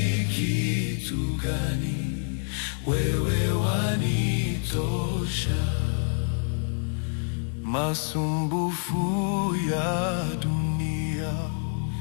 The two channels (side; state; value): right; silent; digital silence